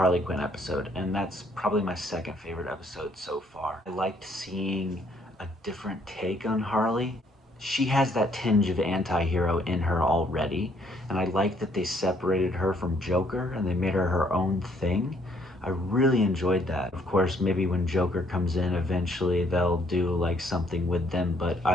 Quinn episode, and that's probably my second favorite episode so far. I liked seeing a different take on Harley. She has that tinge of anti-hero in her already, and I like that they separated her from Joker and they made her her own thing. I really enjoyed that. Of course, maybe when Joker comes in, eventually they'll do like something with them, but I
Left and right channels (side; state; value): both; normal; correlation 0.66